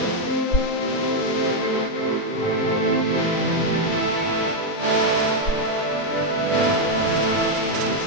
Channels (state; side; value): late; right; 5.7 ms